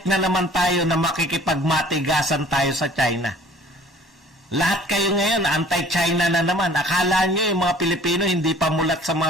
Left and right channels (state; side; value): normal; both; correlation 0.51